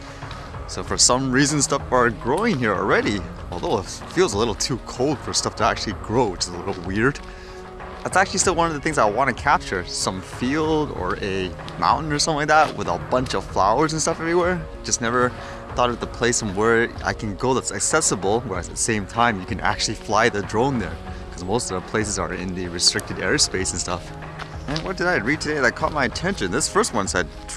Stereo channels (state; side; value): identical; both; correlation 1.00